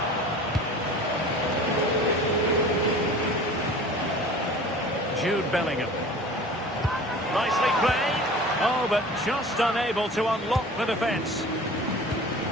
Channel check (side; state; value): both; normal; correlation 0.41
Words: Jude Bellingham. Nicely played. Oh, but just unable to unlock the defence.